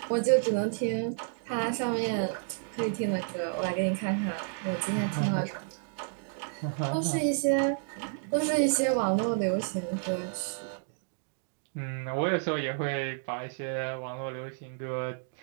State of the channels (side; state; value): left; silent; digital silence